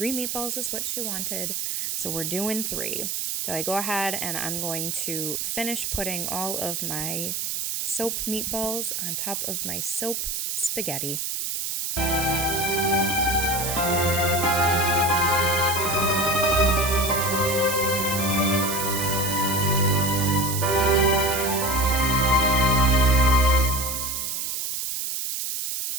meatballs is what she wanted. So we're doing 3. So I go ahead and I'm going to finish putting all of my soap meatballs on top of my soap spaghetti.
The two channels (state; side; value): noise; right; hiss, 2 dB below the sound